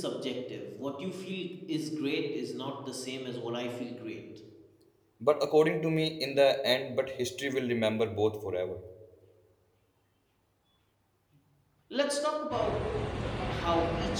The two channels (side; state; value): both; identical; correlation 1.00